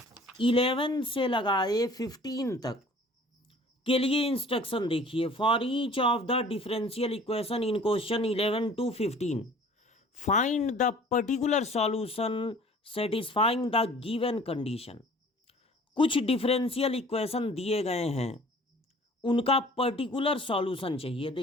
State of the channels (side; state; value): both; normal; correlation 0.50